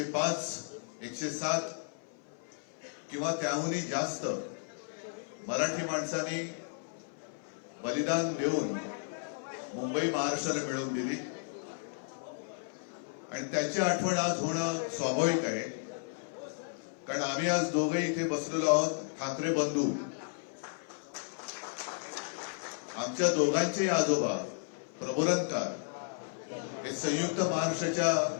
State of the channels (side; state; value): right; silent; 55 dB below the other